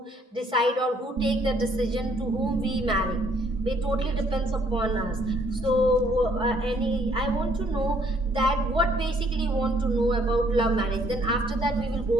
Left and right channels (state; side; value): normal; both; correlation 0.64